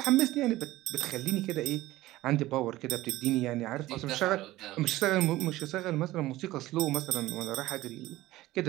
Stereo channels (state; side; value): quieter; left; 16.9 dB